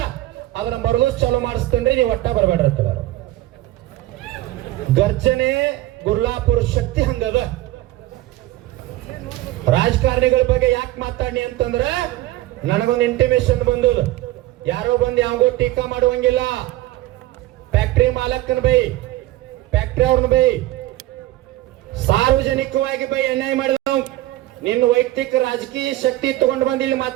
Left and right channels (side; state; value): left; quieter; 16.4 dB